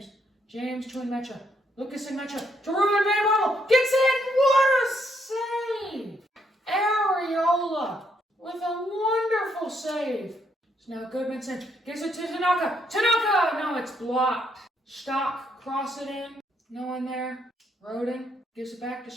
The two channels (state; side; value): normal; both; correlation 0.74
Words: James to Nmecha. Lucas Nmecha to Ruben van Bommel. Gets in. What a save! Areola with a wonderful save. So now Goodmanson gives it to Tanaka. No, it's blocked. Stock, cross it in. No one there. Roden gives it back to